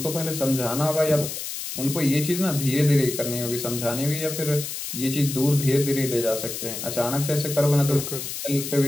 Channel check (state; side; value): noise; left; hiss, 6 dB below the sound